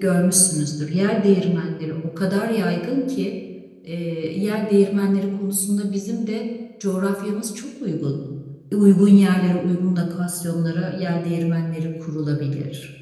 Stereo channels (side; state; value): both; identical; correlation 1.00